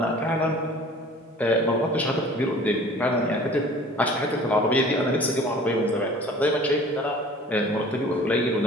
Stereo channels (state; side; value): normal; both; correlation 0.47